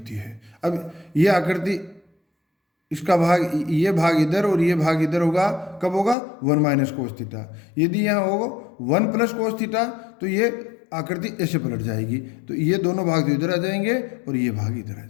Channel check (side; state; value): right; drops out; at 6.2 s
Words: है। अब यह आकृति, इसका भाग, ये भाग इधर और ये भाग इधर होगा, कब होगा 1 माइनस कोस थीटा। यदि यहाँ होगा 1 प्लस कोस थीटा तो ये आकृति ऐसे पलट जाएगी, तो ये दोनों भाग इधर आ जाएंगे और ये भाग इधर आ